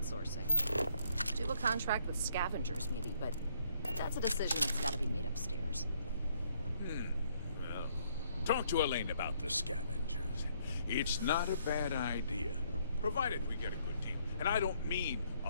Do a contract with scavengers, maybe, but that's a decision that's gotta be made upstairs. Well, talk to Elaine about the scavengers. It's not a bad idea, provided we get a good deal. And I don't mean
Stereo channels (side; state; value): both; inverted; correlation -0.68